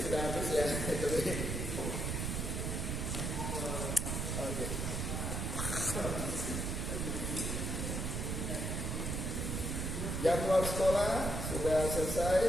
sudah habis ya. Oke. Jadwal sekolah sudah selesai,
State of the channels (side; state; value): right; noise; rumble, 1 dB below the sound